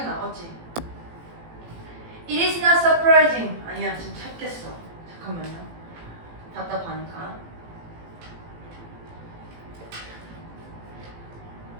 나겠지. It is not surprising. 아니야, 지금 찾겠어. 잠깐만요. 답답하니까.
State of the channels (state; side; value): late; left; 18 ms